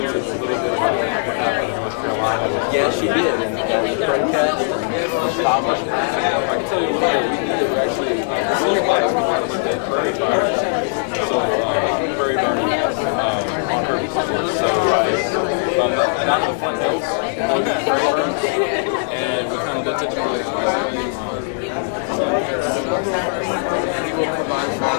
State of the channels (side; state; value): right; silent; digital silence